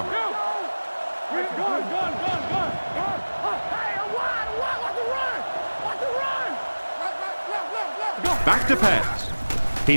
Back to pass. He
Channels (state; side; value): inverted; both; correlation -1.00